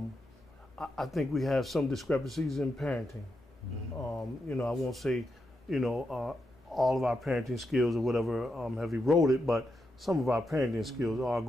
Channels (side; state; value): both; normal; correlation 0.85